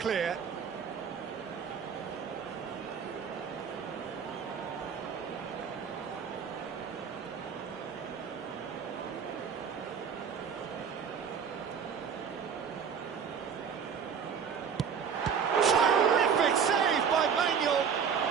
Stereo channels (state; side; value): quieter; left; 6.9 dB